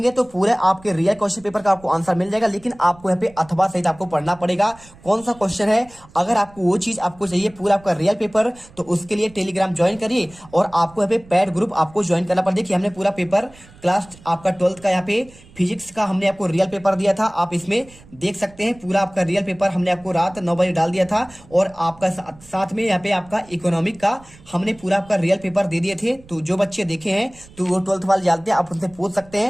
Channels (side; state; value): right; noise; rumble, 24 dB below the sound